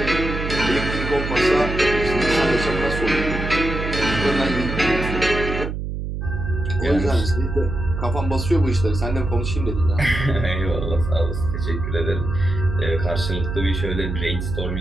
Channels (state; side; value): noise; right; hum, 4 dB below the sound